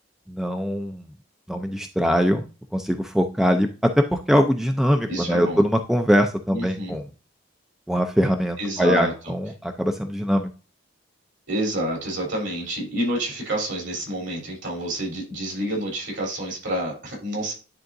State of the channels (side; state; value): both; normal; correlation 0.79